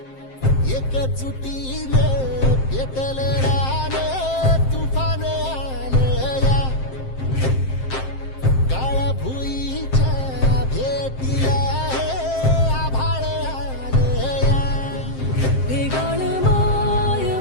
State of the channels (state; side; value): late; right; 7.6 ms